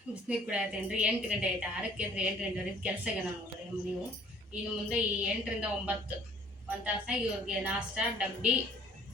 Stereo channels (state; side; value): normal; both; correlation 0.55